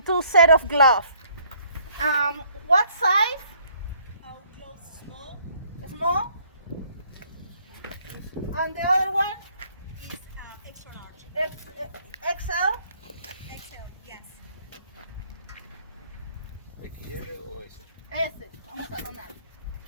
2 set of gloves. What size? Gloves small. Small? And the other one? Is extra large. XL? XL, yes. ¿XL o S? S. Vamos a donar.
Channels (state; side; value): inverted; both; correlation -0.63